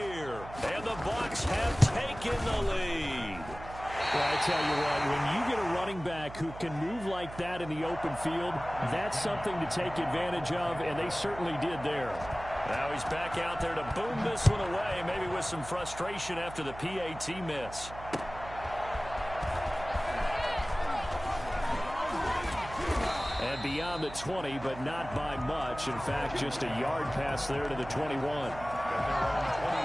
And the Bucs have taken the lead. Well, I tell you what, when you get a running back who can move like that in the open field, that's something to take advantage of, and they certainly did there. Now he's back out there to boom this one away, maybe with some frustration after the PAT miss. And beyond the 20, but not by much. In fact, just a yard pass there to the 21.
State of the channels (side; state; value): right; noise; hum, 14 dB below the sound